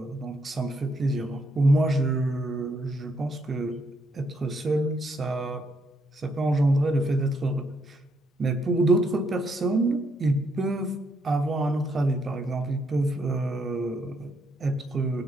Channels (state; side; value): normal; both; correlation 0.75